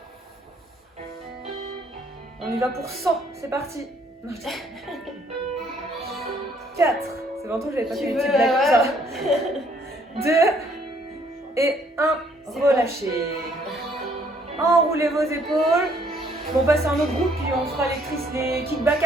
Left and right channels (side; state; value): both; normal; correlation 0.65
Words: On y va pour 100. C'est parti. 4. C'est longtemps que j'avais pas fait des petites blagues comme ça. 2 et 1. Relâchez. Enroulez vos épaules. On passe à un autre groupe puis on fera les kickbacks